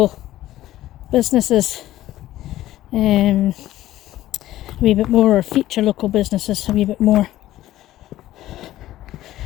businesses a wee bit more, or feature local businesses a wee bit more,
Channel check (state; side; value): quieter; right; 14.6 dB